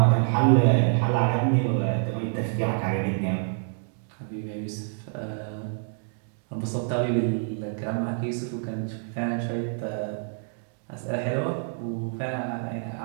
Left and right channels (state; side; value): silent; left; digital silence